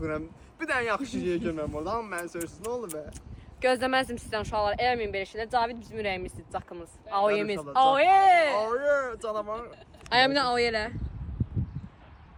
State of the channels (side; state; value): both; identical; correlation 1.00